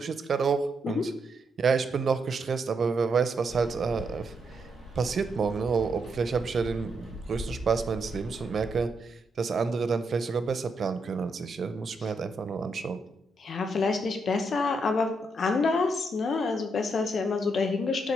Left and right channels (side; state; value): both; normal; correlation 0.79